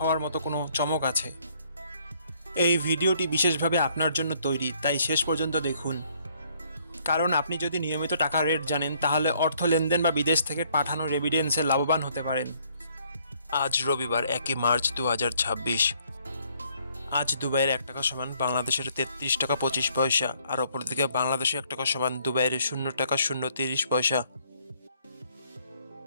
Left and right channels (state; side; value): inverted; both; correlation -0.66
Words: মতো কোনো চমক আছে? এই ভিডিওটি বিশেষভাবে আপনার জন্য তৈরি, তাই শেষ পর্যন্ত দেখুন। কারণ আপনি যদি নিয়মিত টাকার রেট জানেন, তাহলে অর্থ লেনদেন বা বিদেশ থেকে পাঠানো রেমিটেন্সে লাভবান হতে পারেন। আজ রবিবার 1 মার্চ 2026। আজ দুবাইয়ের 1 টাকা সমান বাংলাদেশের 33 টাকা 25 পয়সা, আর অপরদিকে বাংলাদেশে 1 টাকা সমান দুবাইয়ের 0 টাকা 0 30 পয়সা।